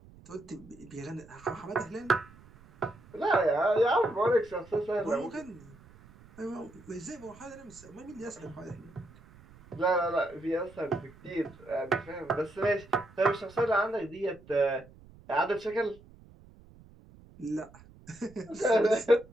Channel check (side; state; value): right; noise; rumble, 23 dB below the sound